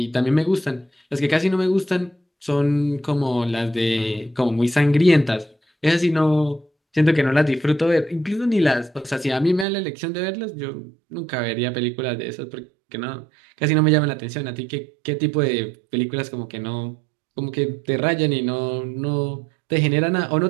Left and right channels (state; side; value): drops out; left; at 9.7 s